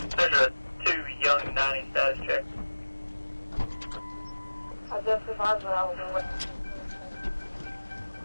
There's a 2 young 90 status check. I just advised that I was in with.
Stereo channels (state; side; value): inverted; both; correlation -1.00